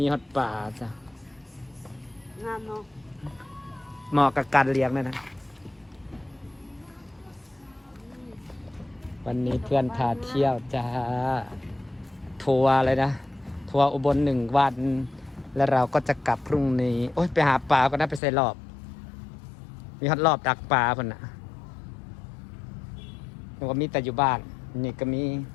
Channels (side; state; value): right; drops out; at 18.2 s